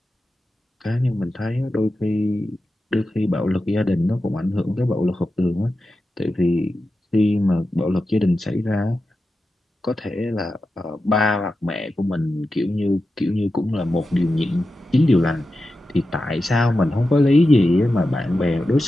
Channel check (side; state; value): both; normal; correlation 0.91